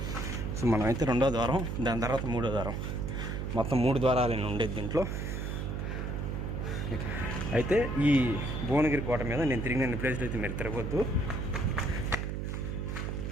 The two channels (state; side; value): noise; right; hum, 3 dB below the sound